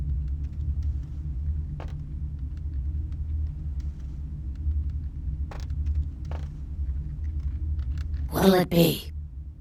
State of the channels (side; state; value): both; identical; correlation 1.00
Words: What'll it be?